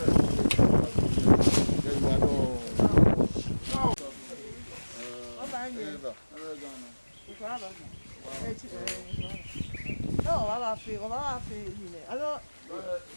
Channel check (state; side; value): inverted; both; correlation -1.00